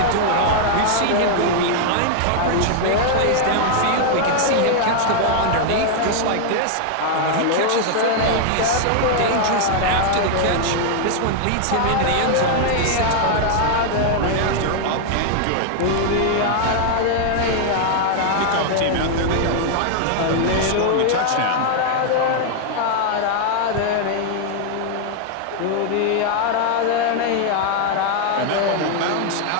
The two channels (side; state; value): both; different; correlation 0.00